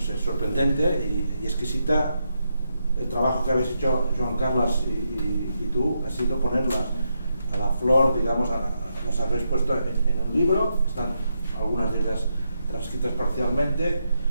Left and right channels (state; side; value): inverted; both; correlation -0.83